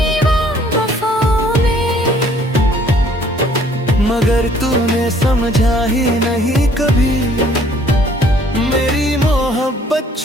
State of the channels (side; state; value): both; normal; correlation 0.59